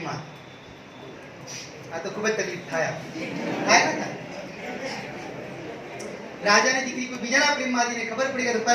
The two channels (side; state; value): both; identical; correlation 1.00